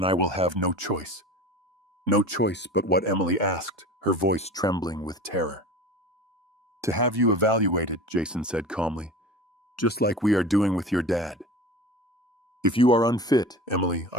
I will have no choice. No choice but what Emily asked, her voice trembling with terror. To have you evaluated, Jason said calmly, just like we are doing with your dad. If you are unfit, Emily,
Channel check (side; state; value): both; normal; correlation 0.35